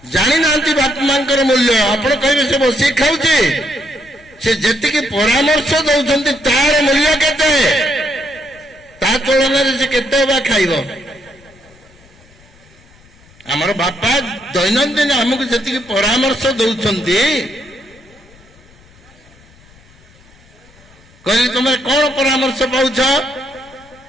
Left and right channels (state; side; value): noise; left; rumble, 27 dB below the sound